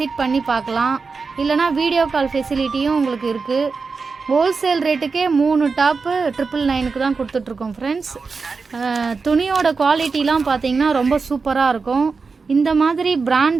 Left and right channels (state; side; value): quieter; left; 4.7 dB